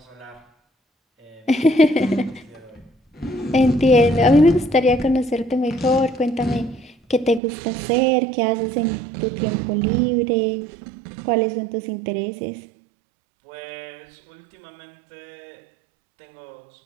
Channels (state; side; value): drops out; left; at 7.4 s